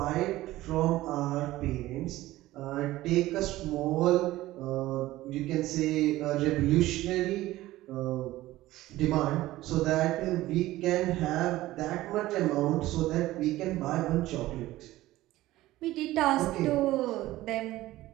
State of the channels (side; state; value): left; quieter; 16.6 dB